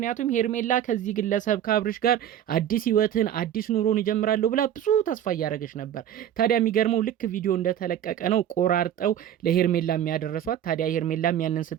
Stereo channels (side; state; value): left; quieter; 10.5 dB